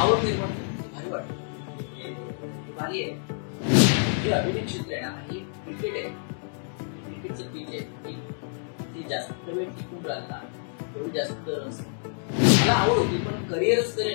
आवड निर्माण भारी वाटतं भारी आहे. जे अभिनय क्षेत्र आहे ना हे क्रिकेट आहे क्रिकेटचं पीच आहे ती जास्त वेळ टिकून राहिला तेवढी जास्त मला आवड होती पण करिअरच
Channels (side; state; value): right; silent; 58 dB below the other